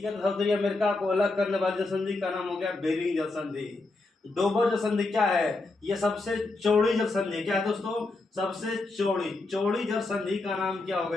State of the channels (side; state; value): right; quieter; 3.2 dB